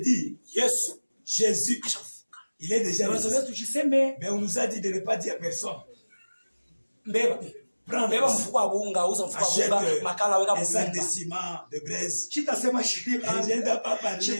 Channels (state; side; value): inverted; both; correlation -1.00